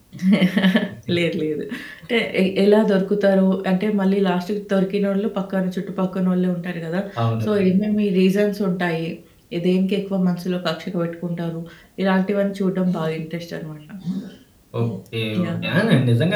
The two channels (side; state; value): both; identical; correlation 1.00